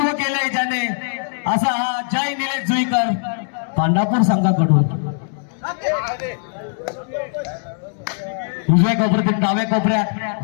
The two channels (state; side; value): silent; right; 66 dB below the other